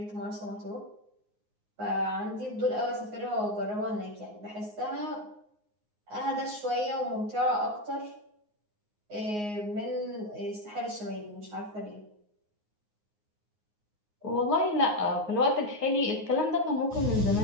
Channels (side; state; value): left; late; 9.6 ms